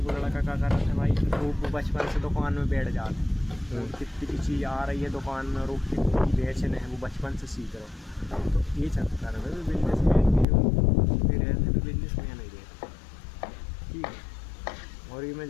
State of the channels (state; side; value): drops out; right; at 10.5 s